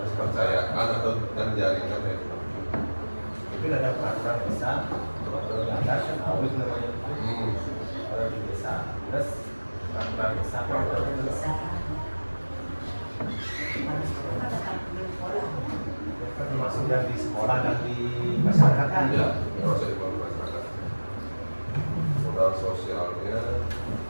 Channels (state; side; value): inverted; both; correlation -1.00